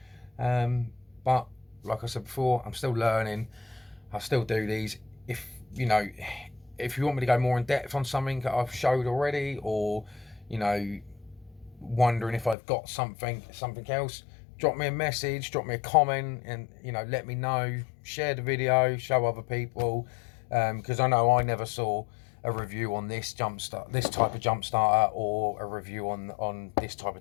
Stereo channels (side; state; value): right; drops out; at 12.6 s